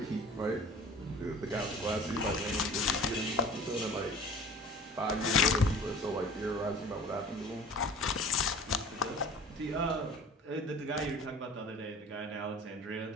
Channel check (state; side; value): normal; both; correlation 0.43